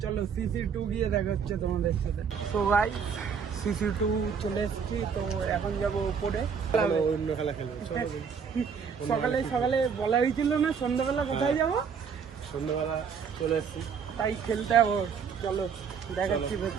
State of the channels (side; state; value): left; quieter; 6.5 dB